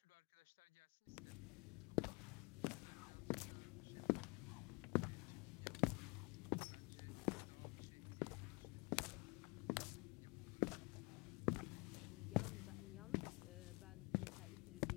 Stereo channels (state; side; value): quieter; right; 28.6 dB